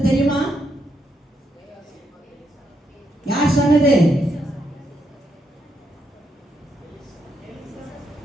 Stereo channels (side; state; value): both; normal; correlation 0.79